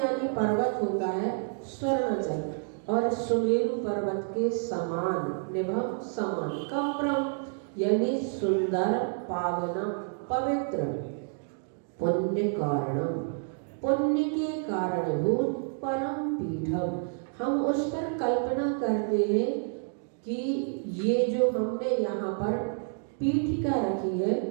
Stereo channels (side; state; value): left; silent; 59 dB below the other